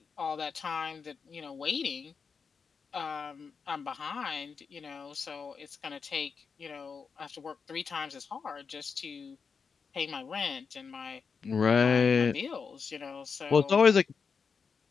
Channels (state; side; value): quieter; right; 5.6 dB